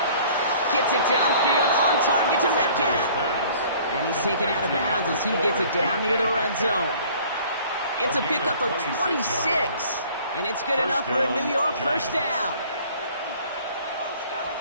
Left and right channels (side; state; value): both; inverted; correlation -0.52